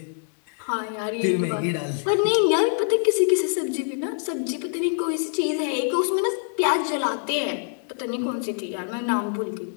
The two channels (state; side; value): silent; right; 62 dB below the other